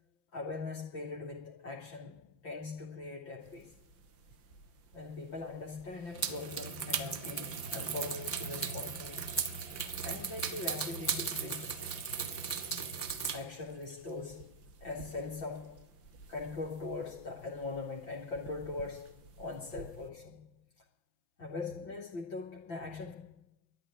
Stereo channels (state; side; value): late; right; 5.7 ms